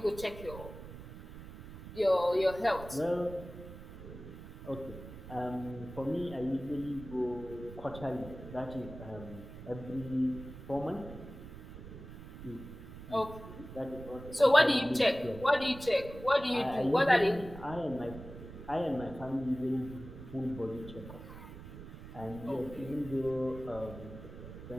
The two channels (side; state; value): right; noise; rumble, 13 dB below the sound